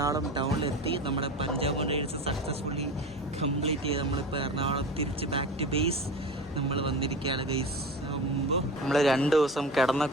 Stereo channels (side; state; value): both; normal; correlation 0.30